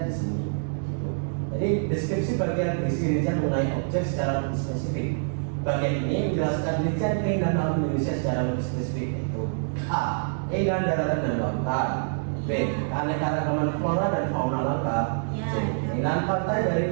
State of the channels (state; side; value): silent; left; digital silence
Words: di sini. Gitu. Jadi deskripsi bagian berisi rincian mengenai objek secara lebih spesifik. Bagian ini menjelaskan rincian keindahan alam Indonesia secara lebih spesifik, yaitu A. Keindahan daratan dan lautan. B. Keanekaragaman flora dan fauna langka. C. Keindahan pantai